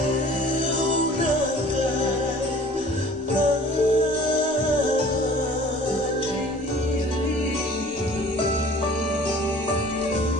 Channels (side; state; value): both; normal; correlation 0.49